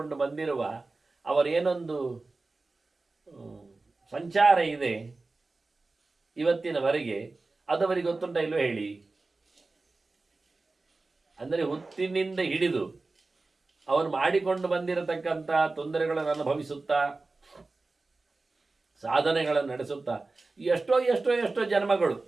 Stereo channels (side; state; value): left; quieter; 3.5 dB